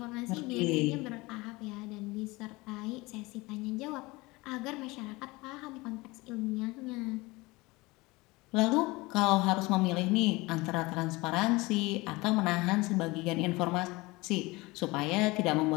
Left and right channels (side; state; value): right; quieter; 22.7 dB